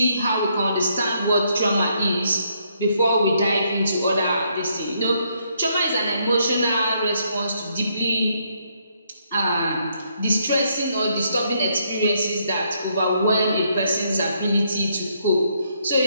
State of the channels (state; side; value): inverted; both; correlation -0.73